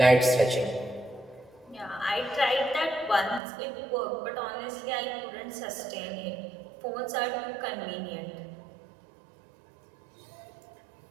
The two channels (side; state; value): left; drops out; at 3.4 s